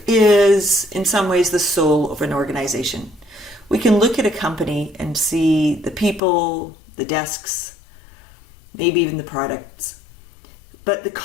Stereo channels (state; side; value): drops out; right; at 6.2 s